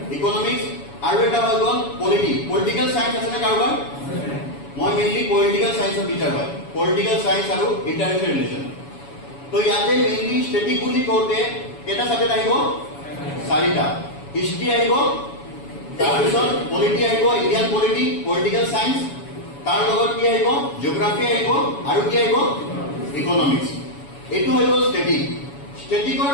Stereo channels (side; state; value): right; late; 7.1 ms